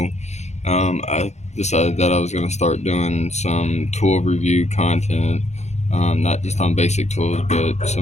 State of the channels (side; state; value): right; late; 0.33 ms